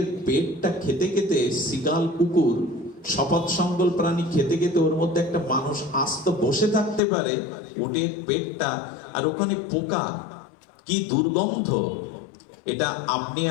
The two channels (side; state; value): right; drops out; at 7.0 s